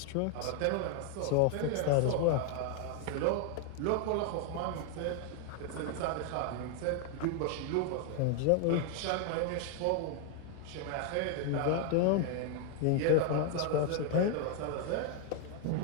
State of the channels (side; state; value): both; different; correlation 0.00